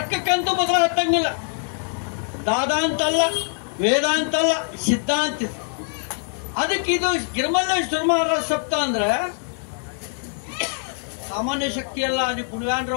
ಬದಲ ಹತ್ತಂಗಿಲ್ಲ. ದಾದ ಅಂತಲ್ಲ, ವೇದ ಅಂತಲ್ಲ, ಸಿದ್ಧಾಂತ. ಅದಕ್ಕೆ ಇದು ಗಿರಿಮಲ್ಲೇಶ್ವರ ಮಹಾರಾಜ ಸಪ್ತಾಹ ಅಂದ್ರೆ ಸಾಮಾನ್ಯ ಶಕ್ತಿ ಅಲ್ಲ. ಅದು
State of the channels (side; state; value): right; silent; 56 dB below the other